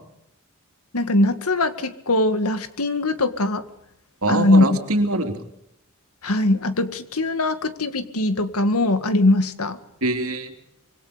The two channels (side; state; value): both; normal; correlation 0.38